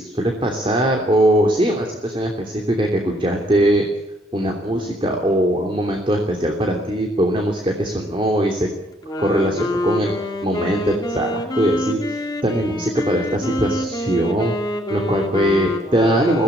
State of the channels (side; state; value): both; normal; correlation 0.67